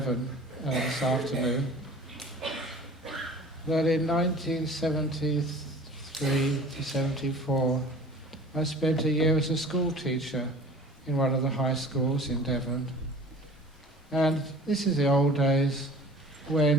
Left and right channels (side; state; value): both; normal; correlation 0.45